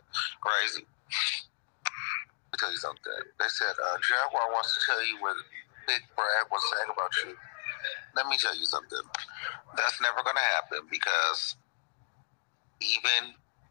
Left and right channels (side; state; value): right; silent; digital silence